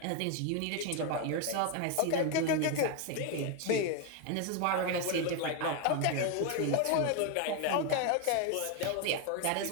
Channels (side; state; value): both; different; correlation 0.01